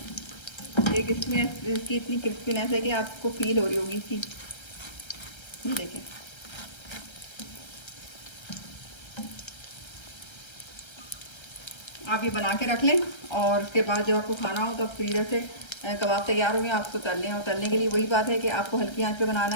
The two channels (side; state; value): right; late; 1.3 ms